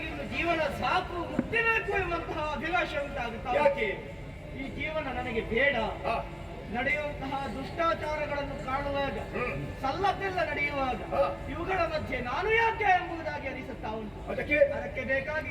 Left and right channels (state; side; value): identical; both; correlation 1.00